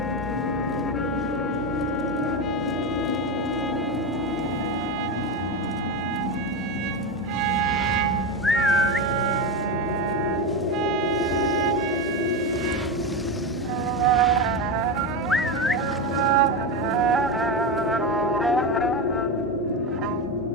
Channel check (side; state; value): both; normal; correlation 0.16